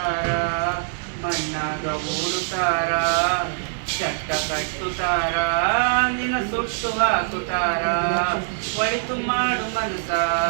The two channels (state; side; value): silent; left; digital silence